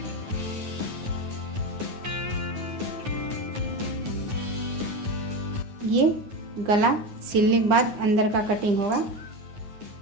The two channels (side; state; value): left; late; 9.8 ms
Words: ये गला सिलने के बाद अंदर का कटिंग होगा।